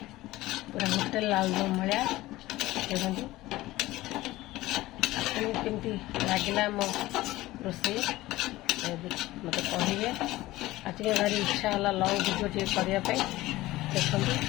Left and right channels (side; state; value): right; quieter; 17.6 dB